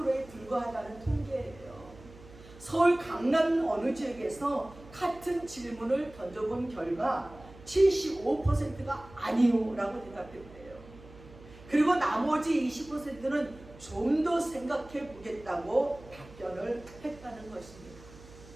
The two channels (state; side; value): noise; right; hum, 20 dB below the sound